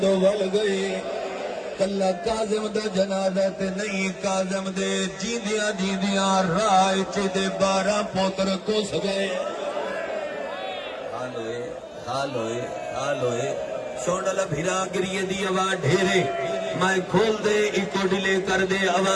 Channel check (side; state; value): both; identical; correlation 1.00